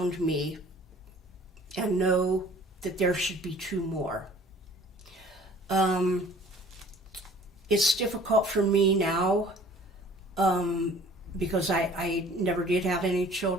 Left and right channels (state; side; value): normal; both; correlation 0.51